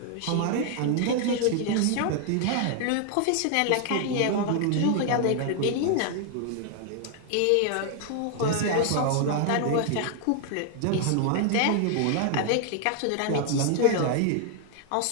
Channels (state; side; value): different; both; correlation 0.00